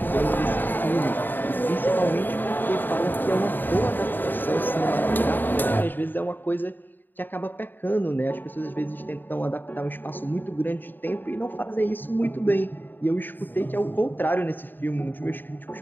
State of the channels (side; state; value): right; late; 0.092 ms